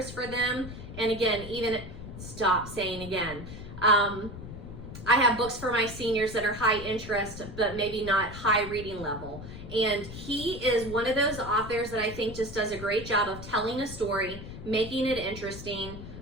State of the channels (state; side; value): noise; left; rumble, 11 dB below the sound